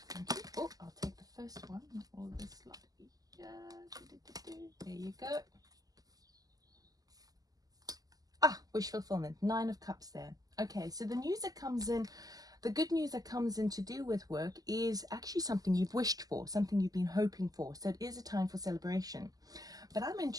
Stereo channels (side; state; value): left; late; 0.18 ms